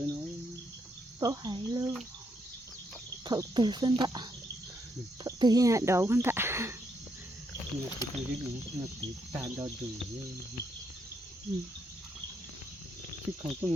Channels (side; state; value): both; normal; correlation 0.77